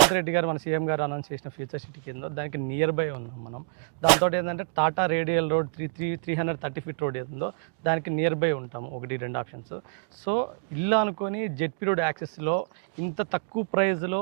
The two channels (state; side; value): quieter; left; 37.0 dB